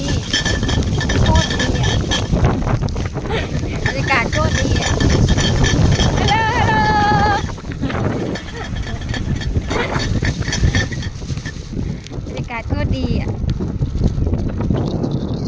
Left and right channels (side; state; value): both; identical; correlation 1.00